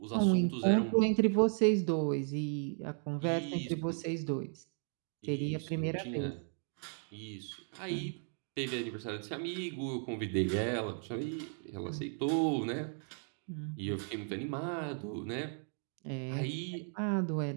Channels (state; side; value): silent; left; 54 dB below the other